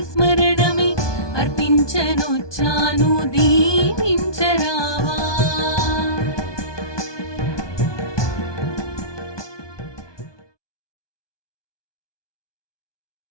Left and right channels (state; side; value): late; right; 1.2 ms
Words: స్మరణమే అర్పించనొచ్చాను దీవించరావా.